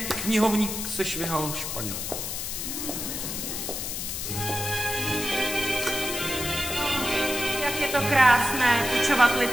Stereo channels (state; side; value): noise; left; hiss, 4 dB below the sound